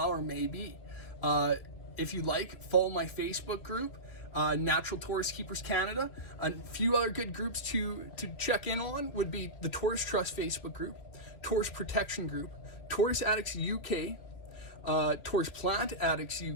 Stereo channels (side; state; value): right; late; 2.9 ms